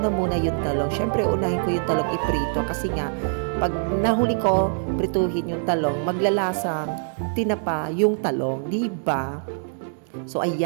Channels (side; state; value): left; silent; 63 dB below the other